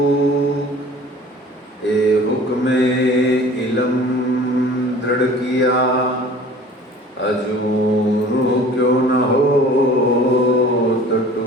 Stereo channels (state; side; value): normal; both; correlation 0.46